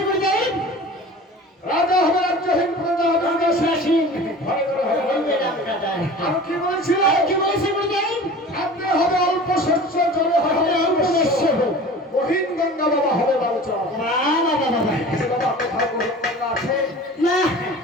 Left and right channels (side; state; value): both; normal; correlation 0.39